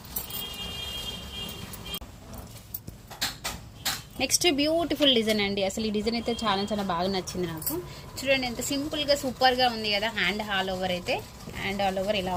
నెక్స్ట్ బ్యూటిఫుల్ డిజైన్ అండి. అసలు ఈ డిజైన్ అయితే చాలా చాలా బాగా నచ్చింది నాకు. చూడండి ఎంత సింపుల్గా సూపర్గా ఉంది కదా. హ్యాండ్ ఆల్ ఓవర్ అయితే హ్యాండ్ ఆల్ ఓవర్ ఇలా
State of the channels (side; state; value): both; identical; correlation 1.00